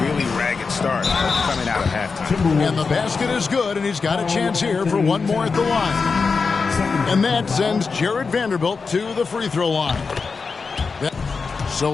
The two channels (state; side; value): quieter; right; 4.8 dB